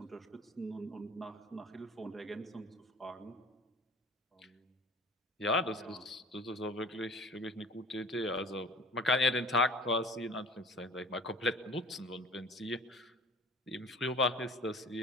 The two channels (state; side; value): normal; both; correlation 0.45